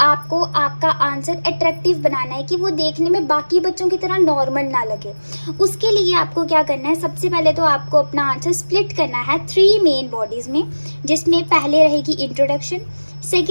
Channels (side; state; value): both; inverted; correlation -1.00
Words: आपको आपका आंसर अट्रैक्टिव बनाना है कि वो देखने में बाकी बच्चों की तरह नॉर्मल ना लगे। उसके लिए आपको क्या करना है? सबसे पहले तो आपको अपना आंसर स्प्लिट करना है 3 मेन बॉडीज़ में, जिसमें पहले रहेगी इंट्रोडक्शन,